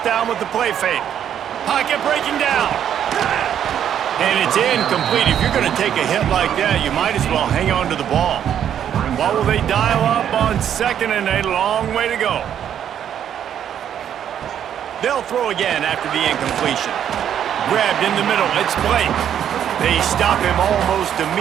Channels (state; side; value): quieter; left; 9.6 dB